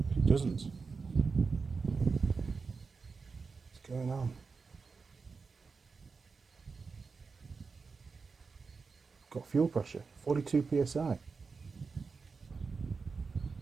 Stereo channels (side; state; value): left; quieter; 4.8 dB